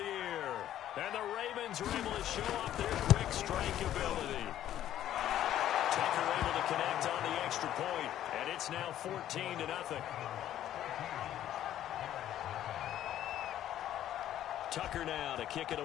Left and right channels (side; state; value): right; quieter; 11.9 dB